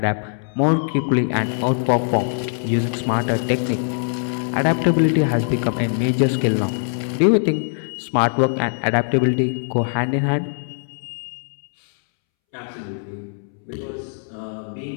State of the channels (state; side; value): silent; right; 65 dB below the other